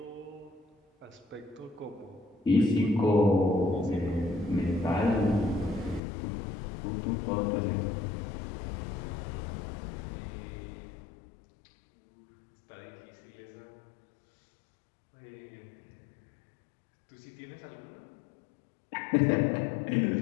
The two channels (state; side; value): drops out; right; at 6.0 s